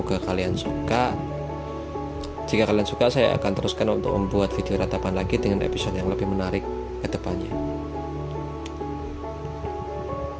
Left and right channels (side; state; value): both; identical; correlation 1.00